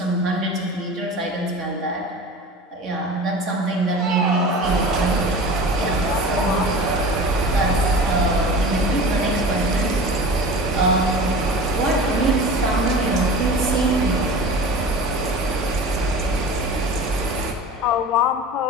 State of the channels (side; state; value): both; normal; correlation 0.36